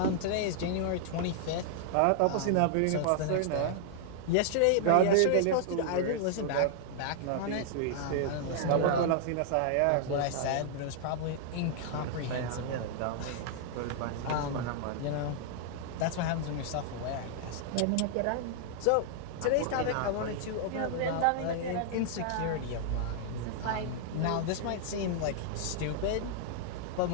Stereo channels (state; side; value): different; both; correlation -0.01